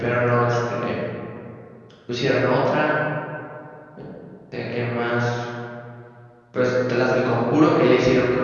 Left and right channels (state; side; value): identical; both; correlation 1.00